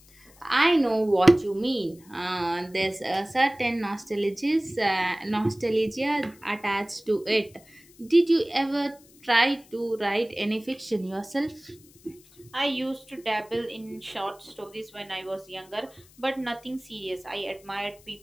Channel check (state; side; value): noise; left; hiss, 26 dB below the sound